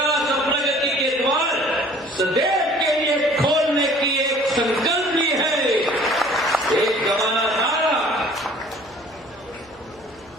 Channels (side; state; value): right; noise; hum, 29 dB below the sound